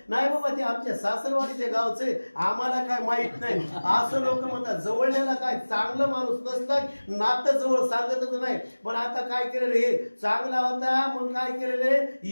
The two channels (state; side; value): inverted; both; correlation -1.00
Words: नाही बाबा ते आमच्या सासरवाडीच्या गावचे आम्हाला काय माहित नाही असं लोक म्हणतात. जवळल्याला काय चांगलं माणूस नसतं नातं जवळ सांगतच नाही. पण आता काय केलेलं हे चांगला होता मग काय केलेले